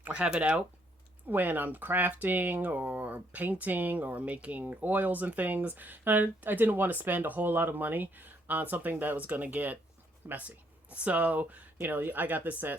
or have it out when I'm crafting or painting or making oils and things. And I didn't want to spend a whole lot of money on something that was going to get messy. So, I got this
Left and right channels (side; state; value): both; normal; correlation 0.70